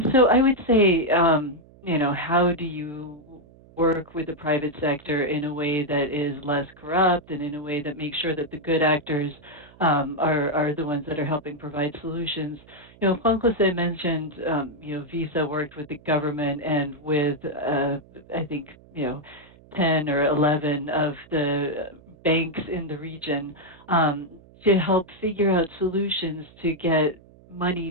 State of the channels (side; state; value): right; noise; hum, 25 dB below the sound